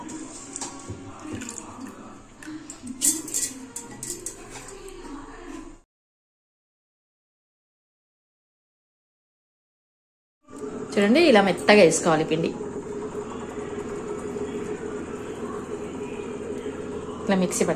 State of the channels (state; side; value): identical; both; correlation 1.00